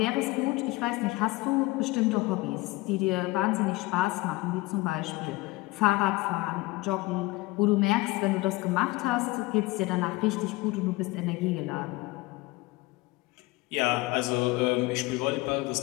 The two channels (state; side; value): quieter; right; 21.3 dB